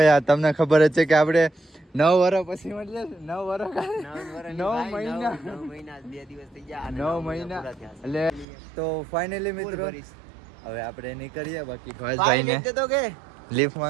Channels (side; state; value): left; drops out; at 8.5 s